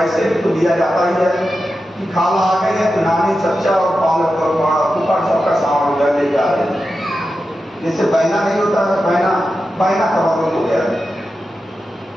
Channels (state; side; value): normal; both; correlation 0.91